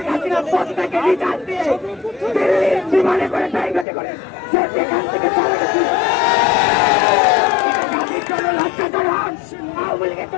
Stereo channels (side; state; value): right; drops out; at 3.9 s